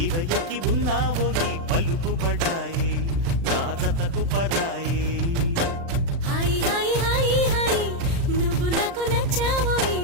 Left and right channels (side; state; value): left; late; 36 ms